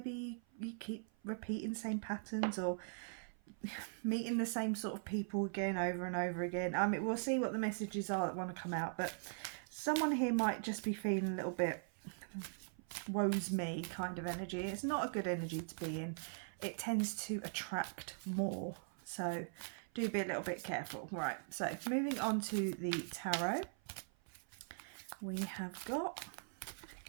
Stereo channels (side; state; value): left; silent; 50 dB below the other